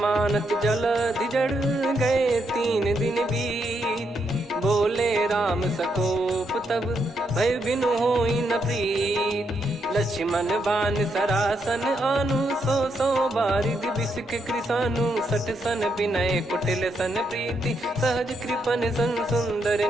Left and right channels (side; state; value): both; normal; correlation 0.79